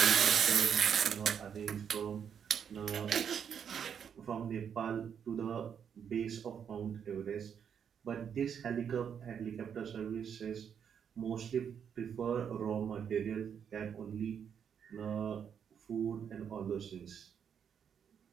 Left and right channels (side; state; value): left; quieter; 7.8 dB